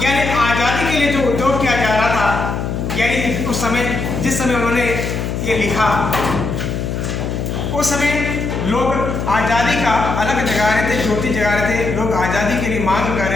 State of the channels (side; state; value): left; noise; hum, 3 dB below the sound